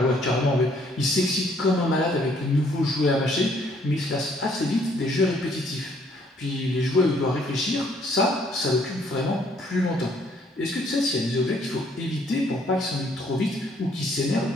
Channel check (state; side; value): normal; both; correlation 0.65